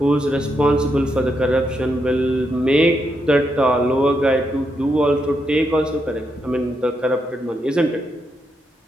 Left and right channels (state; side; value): normal; both; correlation 0.81